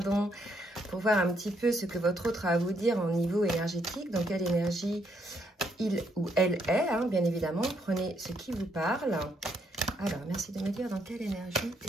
pour voir un petit peu ce que votre autre a à vous dire en niveau énergétique, dans quelle énergie il ou elle est, hein, bien évidemment. Prenez ce qui vous parle. Alors, merci de me dire dans quelle énergie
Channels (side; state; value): both; normal; correlation 0.74